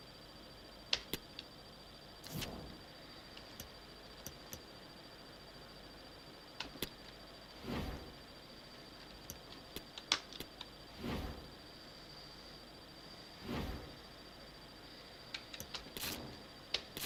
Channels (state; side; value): identical; both; correlation 1.00